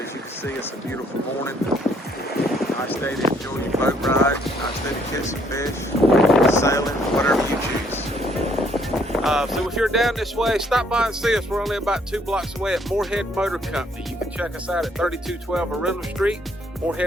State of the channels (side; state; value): both; normal; correlation 0.66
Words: you can see, it's a beautiful morning. Nice day to enjoy your boat ride, nice day to catch some fish, sailing, whatever you choose. So if you're down this way, stop by and see us. We're only about 2 blocks away at Morehead Motor Company. You can check us out at 3212 Arundel Street,